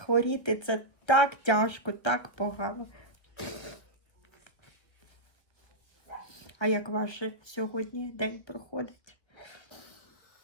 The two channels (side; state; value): right; late; 1.5 ms